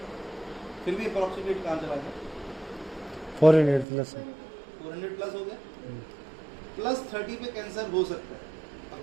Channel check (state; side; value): drops out; left; at 3.9 s